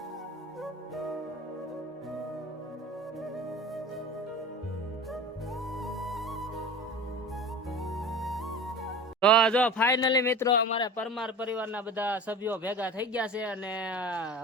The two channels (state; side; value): normal; both; correlation 0.35